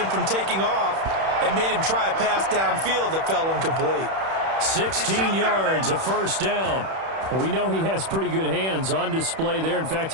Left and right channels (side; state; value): left; late; 31 ms